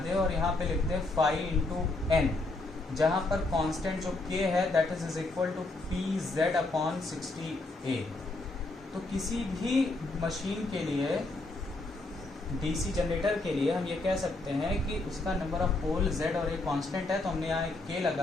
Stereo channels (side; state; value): right; quieter; 3.0 dB